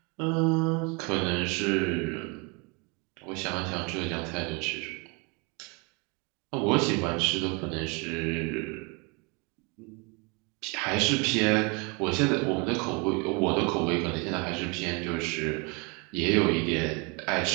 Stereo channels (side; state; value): left; quieter; 30.9 dB